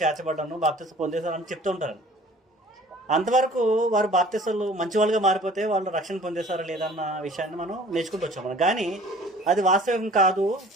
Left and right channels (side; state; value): both; normal; correlation 0.50